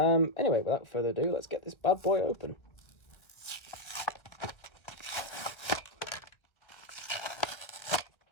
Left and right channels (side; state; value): right; late; 1.6 ms